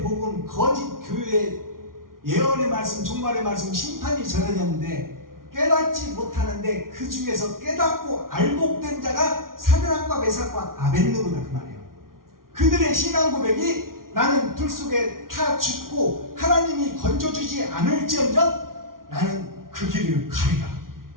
복음 거짓 교회의 예언의 말씀, 종말의 말씀, 심판이 전해졌는데 깨닫지 못하는데 그 중에서 깨닫고 알복된 자가 사드락과 메삭과 아벳느고다 그 말이에요. 그들의 신앙 고백이 나는 불 속에 타 죽고 하나님이 건져주지 않을지언정 나는 그 길을 가리라.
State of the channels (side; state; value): left; late; 0.92 ms